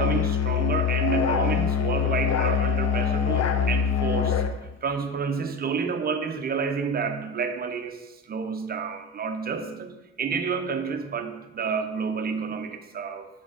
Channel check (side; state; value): both; normal; correlation 0.25